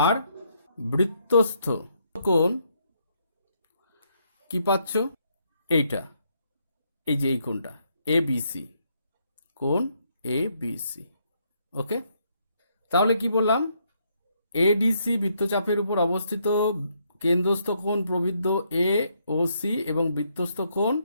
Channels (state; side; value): inverted; both; correlation -0.74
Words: আর বৃত্তস্থ কোণ কি পাচ্ছ? এইটা, এই যে এই কোণটা এবিসি, কোণ এবিসি। ওকে, তাহলে কি বললাম? এডিসি বৃত্তচাপের উপর অবস্থিত কেন্দ্রস্থ কোণ প্রবৃদ্ধ এ ও সি এবং বৃত্তস্থ কোণ